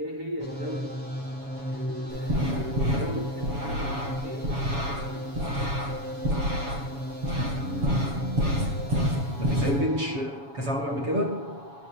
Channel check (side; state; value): left; late; 7.2 ms